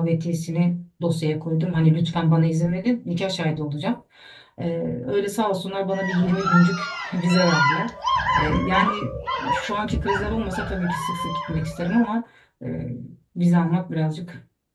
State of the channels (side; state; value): both; identical; correlation 1.00